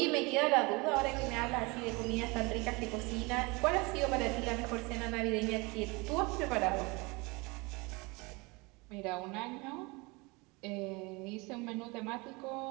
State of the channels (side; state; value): left; quieter; 26.2 dB